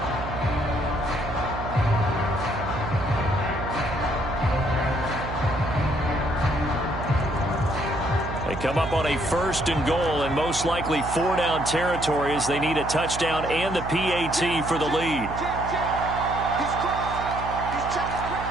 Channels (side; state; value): right; noise; hum, 8 dB below the sound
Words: They come up on a 1st and goal and most likely 4-down territory as they need a touchdown and the PAT for the lead.